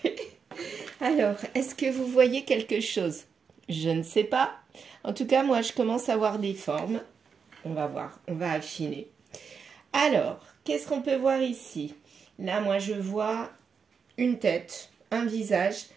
Alors, est-ce que vous voyez quelque chose? Je ne sais pas. En tout cas, moi, je commence à voir des formes. On va voir, on va affiner. Alors, qu'est-ce qu'on peut voir ici? Là, moi, je vois une tête, un visage,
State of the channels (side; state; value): left; quieter; 6.1 dB